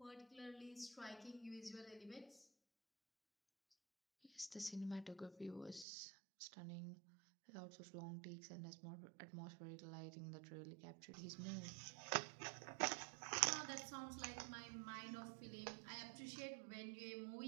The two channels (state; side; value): drops out; left; at 5.9 s